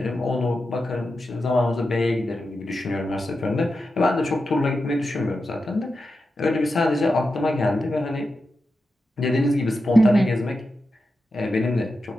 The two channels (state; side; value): normal; both; correlation 0.90